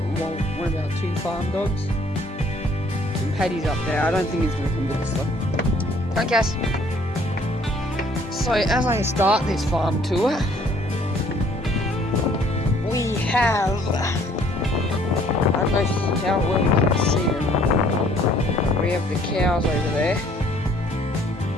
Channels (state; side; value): normal; both; correlation 0.60